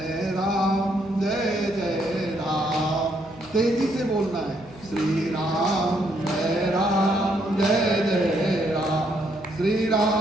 राम जय जय राम। तेजी से बोलना है। श्री राम जय राम जय जय राम। श्री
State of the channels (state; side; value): noise; left; hum, 21 dB below the sound